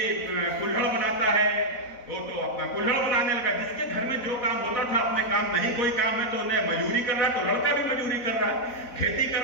कुल्हड़ बनाता है वो तो अपना कुल्हड़ बनाने लगा, जिसके घर में जो काम होता था अपने काम, नहीं कोई काम है तो उन्हें मजदूरी कर रहा है तो लड़का भी मजदूरी कर रहा है, खेती कर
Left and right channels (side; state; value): right; late; 4.0 ms